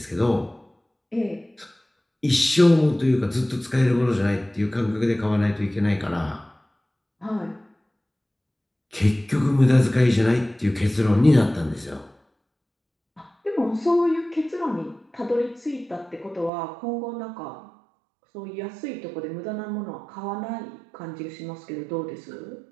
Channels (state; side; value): drops out; left; at 16.5 s